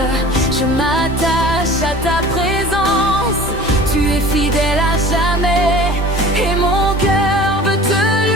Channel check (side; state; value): both; normal; correlation 0.42